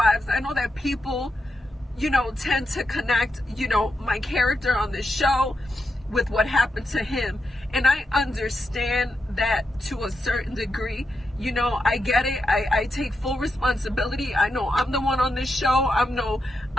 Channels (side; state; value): both; normal; correlation 0.85